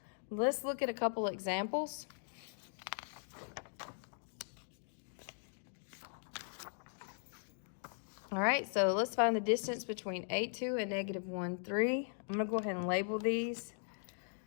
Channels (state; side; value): silent; right; digital silence